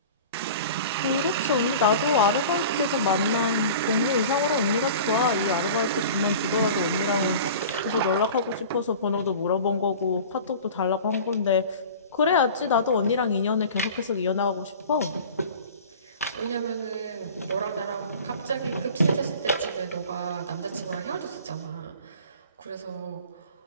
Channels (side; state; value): both; inverted; correlation -0.39